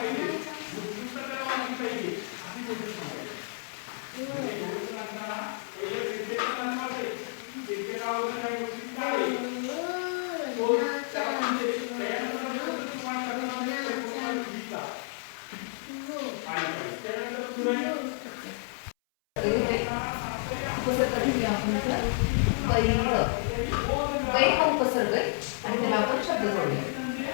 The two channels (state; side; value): silent; right; 58 dB below the other